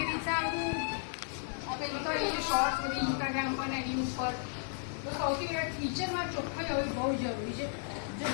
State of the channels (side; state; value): right; silent; digital silence